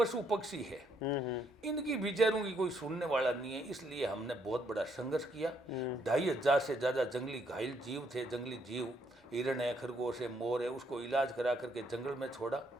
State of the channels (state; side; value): normal; both; correlation 0.72